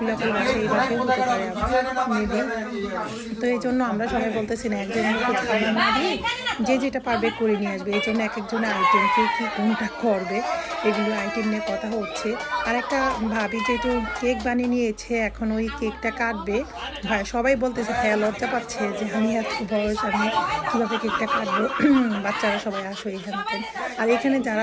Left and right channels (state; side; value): identical; both; correlation 1.00